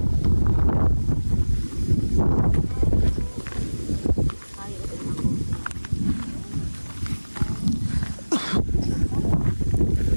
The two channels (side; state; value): both; inverted; correlation -1.00